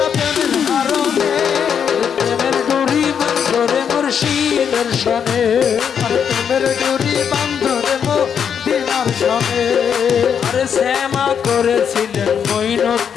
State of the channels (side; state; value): right; quieter; 7.6 dB